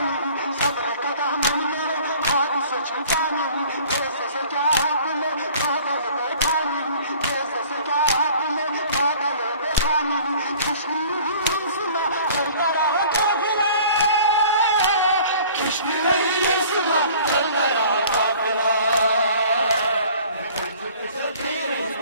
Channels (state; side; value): inverted; both; correlation -0.50